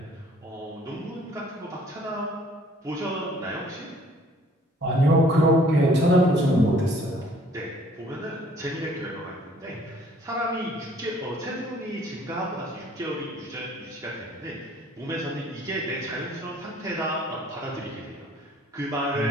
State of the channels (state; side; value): normal; both; correlation 0.57